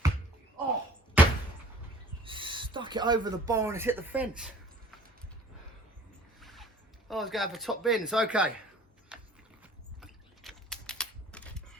Oh! Stuck it over the bar and it's hit the fence. Oh, I was going for top bins. Okay.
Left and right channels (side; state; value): both; normal; correlation 0.49